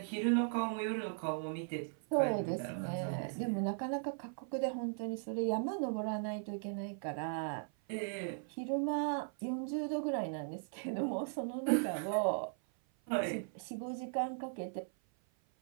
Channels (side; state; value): left; silent; 52 dB below the other